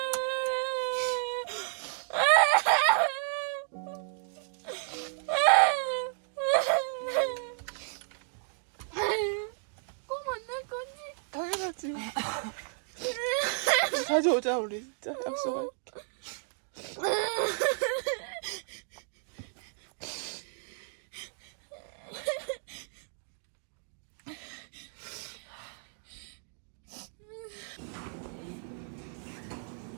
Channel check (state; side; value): silent; left; 56 dB below the other